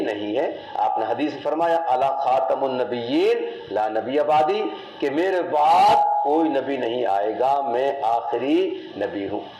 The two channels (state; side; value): identical; both; correlation 1.00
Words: نہیں ہے۔ آپ نے حدیث فرمایا الا خاتم النبیین لا نبی بعدی، کہ میرے بعد کوئی نبی نہیں آئے گا، میں آخری نبی ہوں۔